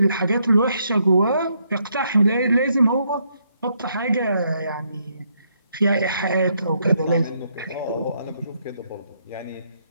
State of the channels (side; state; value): both; inverted; correlation -0.75